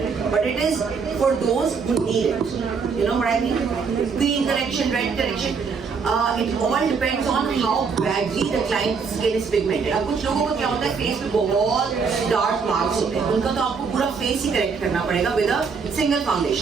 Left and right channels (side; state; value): left; quieter; 5.5 dB